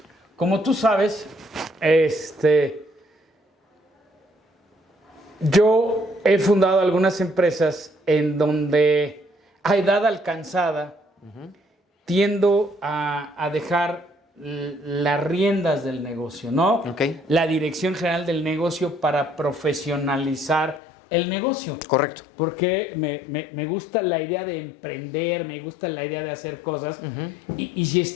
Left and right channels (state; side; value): drops out; right; at 20.8 s